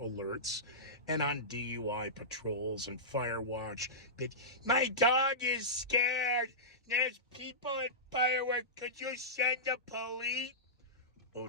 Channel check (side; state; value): both; normal; correlation -0.17